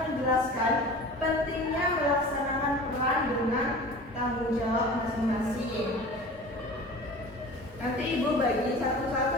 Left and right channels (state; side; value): normal; both; correlation 0.39